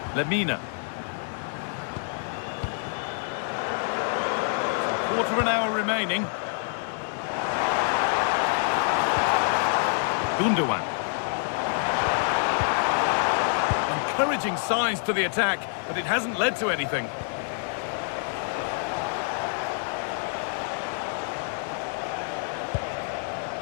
Lemina. So quarter of an hour remaining. Gundogan. Encouraging signs to the attack, but it hasn't led to anything.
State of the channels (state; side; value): silent; right; 59 dB below the other